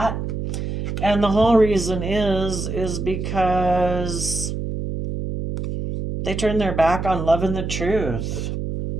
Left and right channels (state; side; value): noise; right; hum, 4 dB below the sound